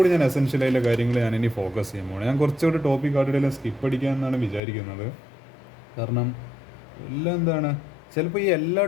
ഞാൻ എസെൻഷ്യലായിട്ടുള്ള കാര്യങ്ങൾ ഞാനിനി ഫോക്കസ് ചെയ്യുമ്പോൾ ഞാൻ കുറച്ചുകൂടി ടോപ്പിക് ആയിട്ടുള്ള സ്കിപ്പ് അടിക്കാമെന്നാണ് വിചാരിക്കുന്നത്. കാരണം എല്ലാം എന്താണ് ചിലപ്പോൾ ഈ എല്ലാ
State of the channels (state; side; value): drops out; right; at 4.6 s